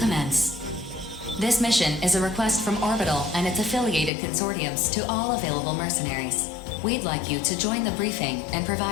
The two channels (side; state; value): right; drops out; at 4.1 s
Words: This mission is a request from Orbital and its affiliated consortiums to all available mercenaries. We'd like you to join the briefing and